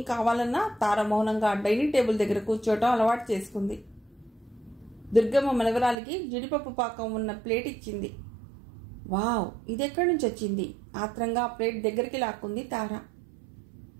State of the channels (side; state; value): left; drops out; at 6.0 s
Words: కావాలన్నా తార మౌనంగా డైనింగ్ టేబుల్ దగ్గర కూర్చోవటం అలవాటు చేసుకుంది. దుర్గమ్మ మనవరాలికి జీడిపప్పు పాకం ఉన్న ప్లేట్ ఇచ్చింది. వావ్, ఇదెక్కడి నుంచి వచ్చింది? ఆత్రంగా ప్లేట్ దగ్గరికి లాక్కుంది తార.